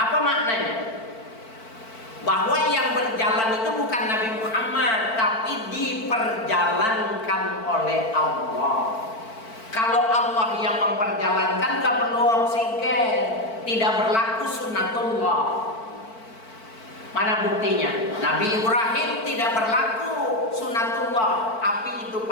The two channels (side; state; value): right; late; 4.5 ms